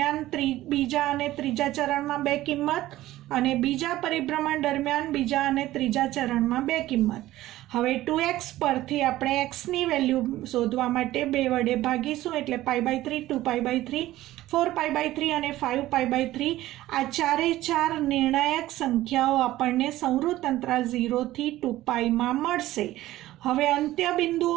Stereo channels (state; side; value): quieter; left; 15.6 dB